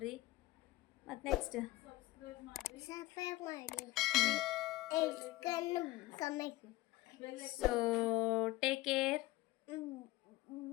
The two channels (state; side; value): quieter; right; 18.3 dB